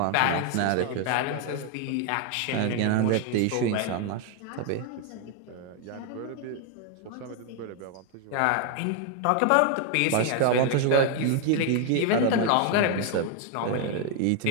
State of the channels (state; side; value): different; both; correlation 0.01